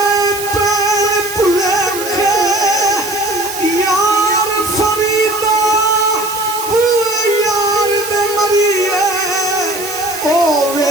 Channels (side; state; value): right; noise; hiss, 9 dB below the sound